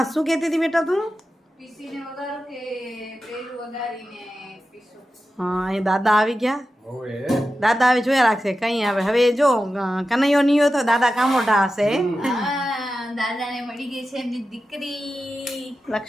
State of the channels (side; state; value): both; normal; correlation 0.92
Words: શું કહેતી હતી બેટા તું? પીસીને વગાડો કે પેલું વગાડીને પીસો? હા, એ દાદા આવી ગયા. દાદા હવે જોયા રાખશે કઈ આવે. હવે જો કનૈયો નહીં હોય તો દાદા કામોટા હશે. દાદાને મળી ગઈ છે એમની દીકરી